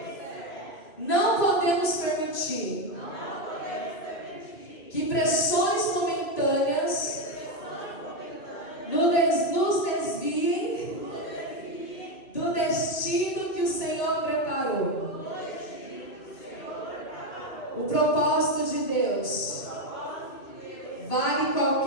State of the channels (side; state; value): right; late; 2.3 ms